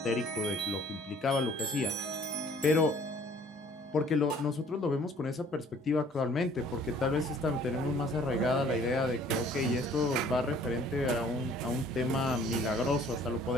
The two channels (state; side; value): normal; both; correlation 0.55